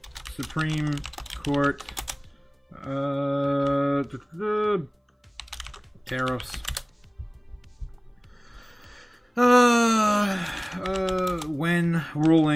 Supreme Court tariffs. When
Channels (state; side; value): identical; both; correlation 1.00